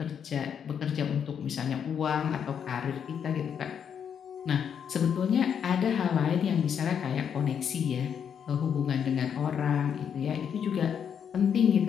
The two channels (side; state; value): right; quieter; 7.9 dB